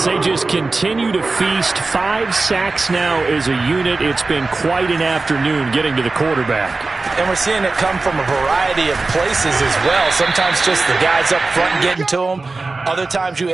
they just continue to feast. 5 sacks now as a unit. It's been quite an afternoon getting to the quarterback. And we're seeing it come from a variety of places as well. Sometimes just the guys up front getting to him. Other times you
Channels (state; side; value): quieter; left; 3.6 dB